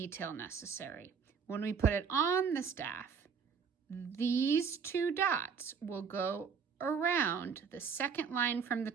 necessary. When we put it on the staff, these two dots will go around the second line from the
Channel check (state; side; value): quieter; left; 6.3 dB